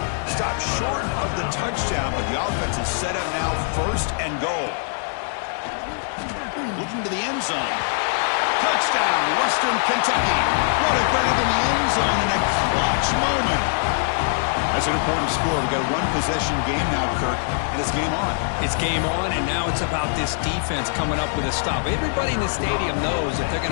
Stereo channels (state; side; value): silent; right; digital silence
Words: Stopped short of the touchdown, but the offense is set up now 1st and goal. Looking to the end zone. Touchdown, Western Kentucky. What a grab in the end zone in a clutch moment. That's an important score. We've got a 1-possession game now, Kirk, and it's game on. It's game on, and now it's about this defense coming up with a stop. Everybody in the stadium knows that they're